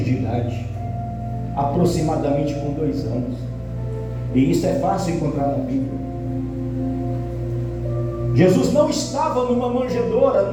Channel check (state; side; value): identical; both; correlation 1.00